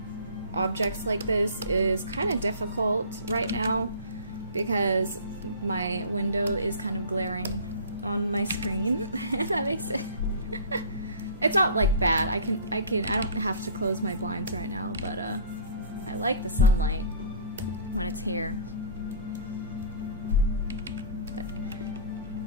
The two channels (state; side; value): inverted; both; correlation -0.43